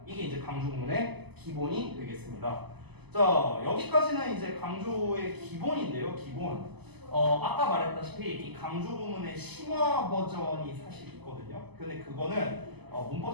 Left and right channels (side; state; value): left; late; 0.99 ms